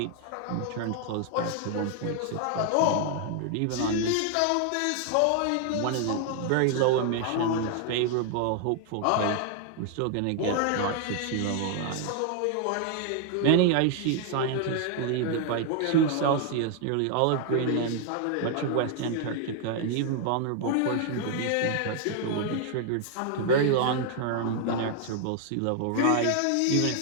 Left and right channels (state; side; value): different; both; correlation 0.00